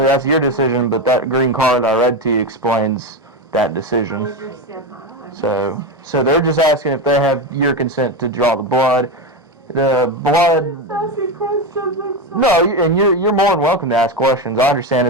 that's your decision, but that green card I read to you explains that decision. I understand that. So they're just asking if they have your consent to draw the blood. The blood. Asking questions. No, and you're more than welcome to ask questions. I understand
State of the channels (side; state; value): both; normal; correlation 0.15